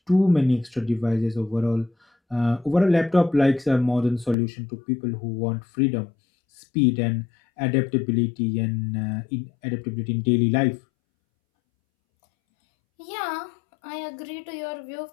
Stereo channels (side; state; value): right; drops out; at 4.4 s